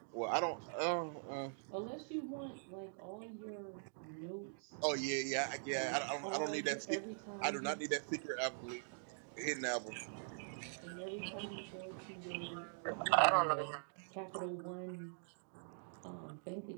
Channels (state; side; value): silent; left; digital silence